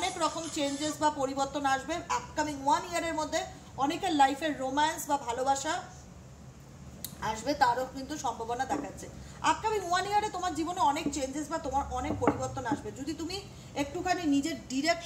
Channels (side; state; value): both; identical; correlation 1.00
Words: রকম চেঞ্জেস বা পরিবর্তন আসবে। আপকামিং 1 ইয়ারের মধ্যে অনেকের লাইফের রোম্যান্স বা ভালোবাসা আসবে, তারও কিন্তু সম্ভাবনা দেখাচ্ছে। আপকামিং 1 ইয়ারে তোমার জীবনে অনেক চেঞ্জেস বা তোমার অনেক পরিবর্তন আসবে যদি তুমি একটুখানি নিজের